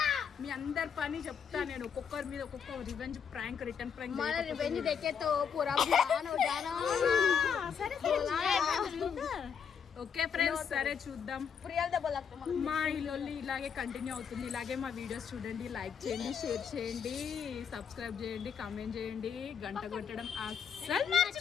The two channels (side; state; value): right; quieter; 7.1 dB